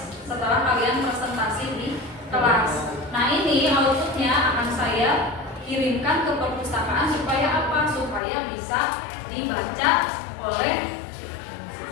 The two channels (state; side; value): drops out; right; at 8.2 s